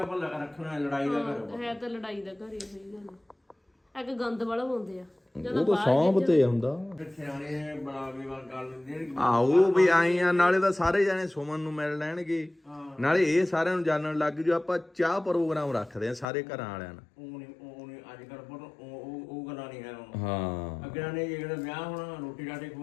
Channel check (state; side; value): drops out; right; at 16.2 s